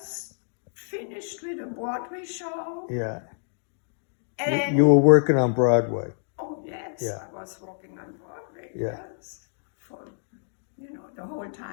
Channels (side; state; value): right; silent; digital silence